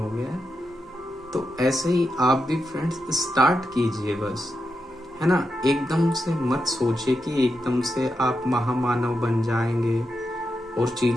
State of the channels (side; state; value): both; normal; correlation 0.87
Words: गया। तो ऐसे ही आप भी फ्रेंड्स स्टार्ट कीजिए बस, है ना। एकदम से मत सोचिए कि एकदम से आप महामानव बन जाएंगे और